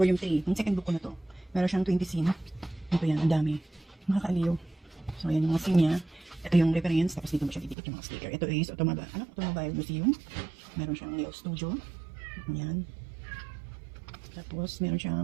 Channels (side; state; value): left; drops out; at 7.8 s